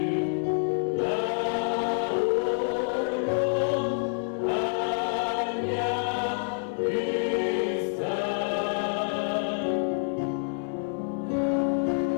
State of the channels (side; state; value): right; silent; 56 dB below the other